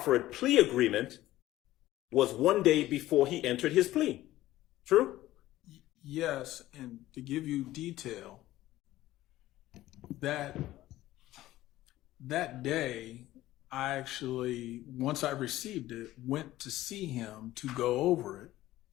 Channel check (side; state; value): right; quieter; 15.5 dB